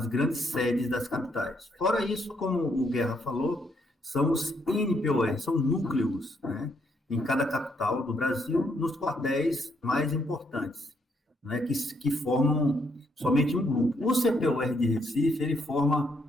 grandes sedes das capitais. Fora isso, como o Guerra falou, são os NPOR, são núcleos, né, em cada capital do Brasil, nos quartéis mais importantes, né, que formam somente um grupo. O CPOR de Recife, ele forma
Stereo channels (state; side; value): normal; both; correlation 0.73